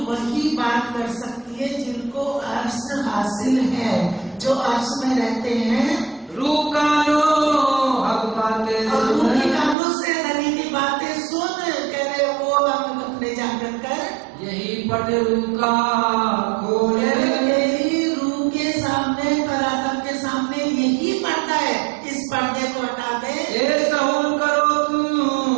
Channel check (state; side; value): drops out; left; at 9.8 s